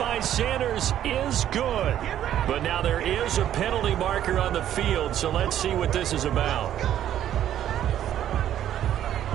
Sanders is good. But now there is a penalty marker on the field, so let's see what this is about.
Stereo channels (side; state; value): left; quieter; 11.2 dB